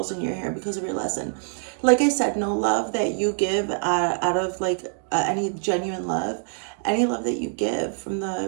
in your hair because of your lesson. Like I said, no love that you give out of like any genuine love. Any love that you give from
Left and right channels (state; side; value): silent; left; 62 dB below the other